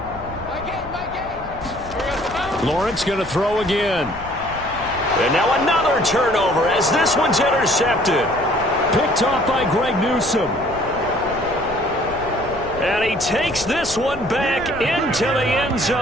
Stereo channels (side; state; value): left; noise; rumble, 16 dB below the sound